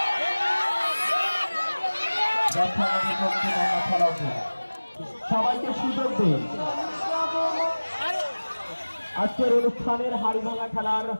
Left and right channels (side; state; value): both; inverted; correlation -1.00